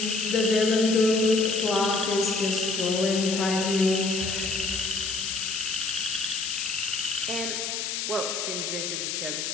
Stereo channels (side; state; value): left; noise; hiss, 3 dB below the sound